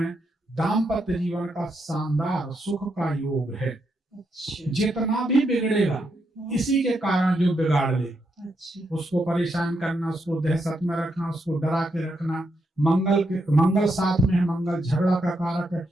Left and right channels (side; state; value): both; normal; correlation 0.81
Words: दाम्पत्य जीवन का शानदार सुख का योग है। जितना भी बिगड़ेगा इसी के कारण जो बिगाड़ ले, उसको परेशान करना, उसको दहशत में रखना, उसको डरा के रखना। मंगल 7 में है, मंगल झगड़ा का कारक है,